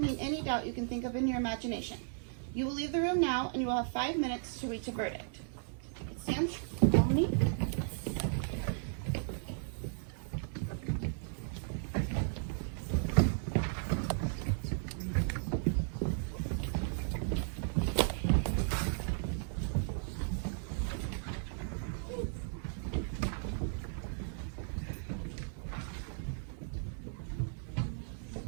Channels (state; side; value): silent; left; digital silence